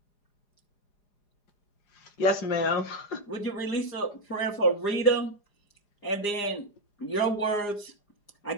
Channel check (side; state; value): right; late; 4.9 ms